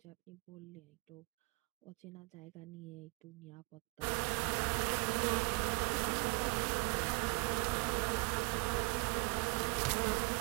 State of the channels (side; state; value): left; quieter; 27.1 dB